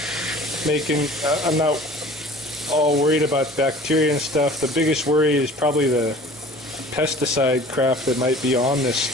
making, I'm not all worried about bacteria and stuff. The biggest worry is probably the pesticide crap that might be on this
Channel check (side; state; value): both; normal; correlation 0.45